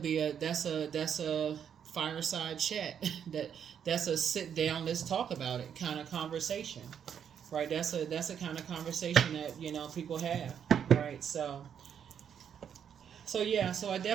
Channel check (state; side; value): quieter; left; 8.3 dB